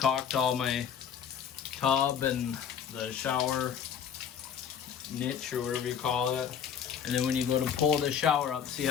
all my tub and the shower niche or whatever you call it. And then when you go to pull the shower up, see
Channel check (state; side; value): quieter; right; 8.0 dB